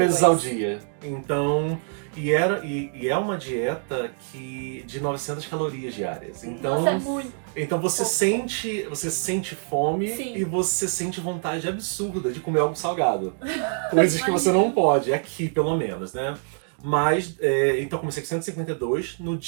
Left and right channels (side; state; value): left; silent; 57 dB below the other